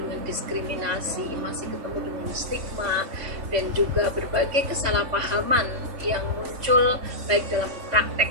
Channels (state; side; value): late; left; 3.5 ms